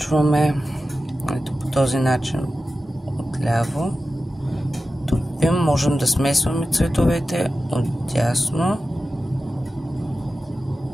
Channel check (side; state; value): both; normal; correlation 0.93